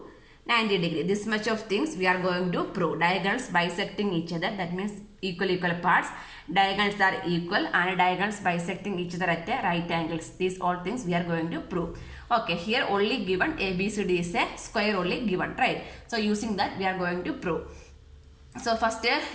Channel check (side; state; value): both; identical; correlation 1.00